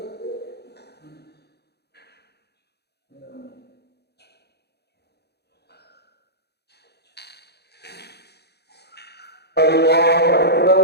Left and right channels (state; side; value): late; right; 0.48 ms